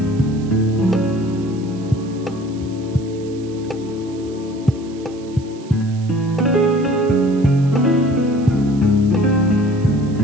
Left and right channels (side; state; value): right; noise; hiss, 24 dB below the sound